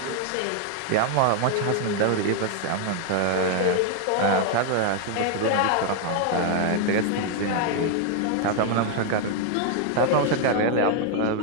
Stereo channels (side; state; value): both; different; correlation 0.00